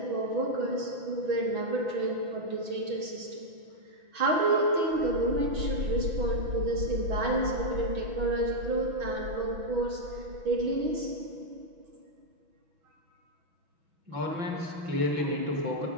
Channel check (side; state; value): left; late; 6.2 ms